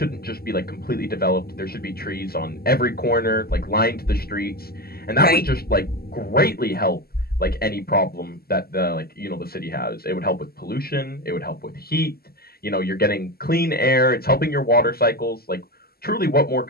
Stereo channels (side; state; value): right; late; 0.45 ms